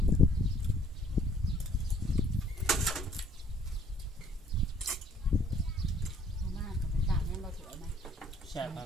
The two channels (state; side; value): normal; both; correlation 0.60